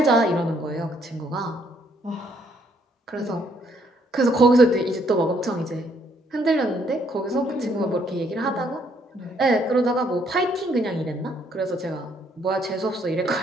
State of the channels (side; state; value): both; normal; correlation 0.69